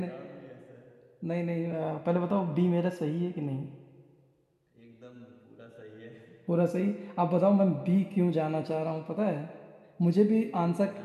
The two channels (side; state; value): both; identical; correlation 1.00